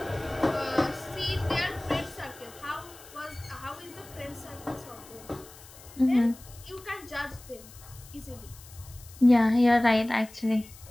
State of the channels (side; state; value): left; noise; hiss, 20 dB below the sound